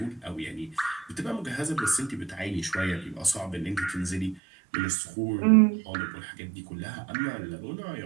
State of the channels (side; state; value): left; drops out; at 4.4 s